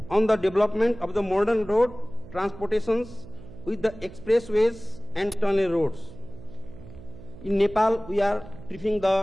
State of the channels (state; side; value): noise; right; hum, 17 dB below the sound